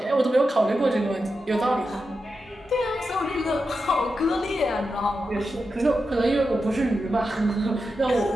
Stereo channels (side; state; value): both; normal; correlation 0.89